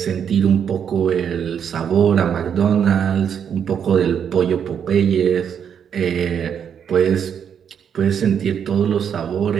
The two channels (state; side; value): quieter; left; 8.0 dB